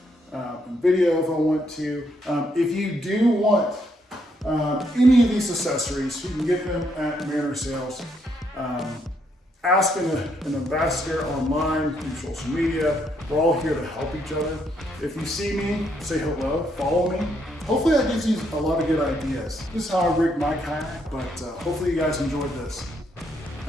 and video if I want to. If you do want any of these accessories, you can get them at Manor Sales. Ask an ambassador online, through social media. We're all here to help each other. If you see me, say hello, follow me. Hopefully that gives you a lot of good ideas. This is how I rig my kayak, but hopefully you guys enjoyed this.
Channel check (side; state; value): both; normal; correlation 0.74